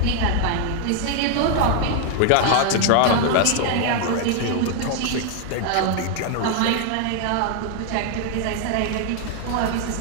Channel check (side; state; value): both; different; correlation 0.00